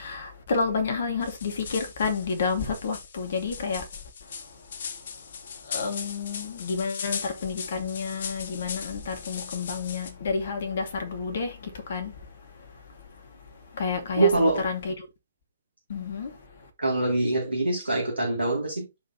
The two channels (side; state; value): both; inverted; correlation -0.70